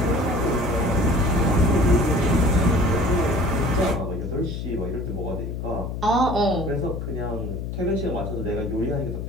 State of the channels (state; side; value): noise; left; hum, 5 dB below the sound